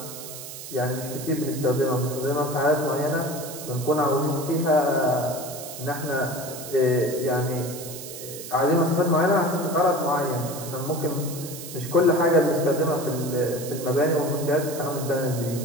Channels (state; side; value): noise; right; hiss, 11 dB below the sound